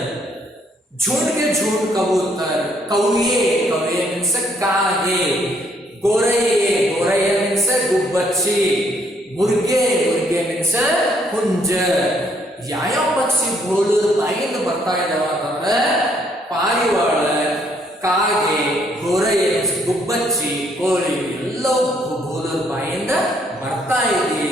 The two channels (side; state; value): both; normal; correlation 0.68